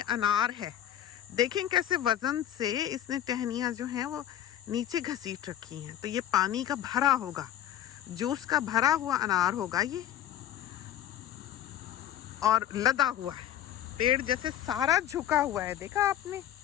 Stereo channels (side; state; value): right; quieter; 11.4 dB